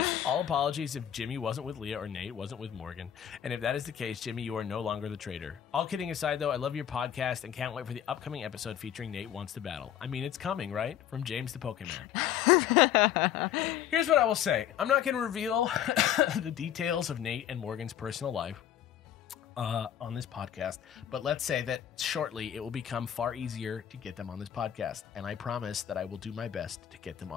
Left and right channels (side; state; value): right; quieter; 10.2 dB